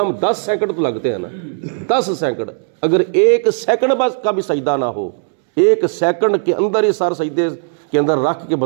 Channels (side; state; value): left; silent; digital silence